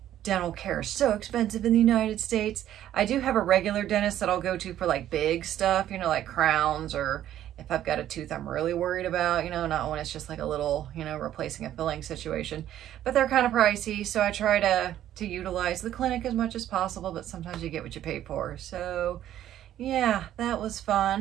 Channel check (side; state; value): left; quieter; 11.9 dB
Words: dental care is so expensive in the United States. I do have a regular dentist that I'll go to for like big stuff, you know, like crowns, or if I've got a tooth I'm really worried about, you know, not when it's just like a little, you know, replacing a filling situation. But they're kind of pricey, so I try to utilize the clinic as much as possible, but sometimes you get what you pay for. So yeah, that was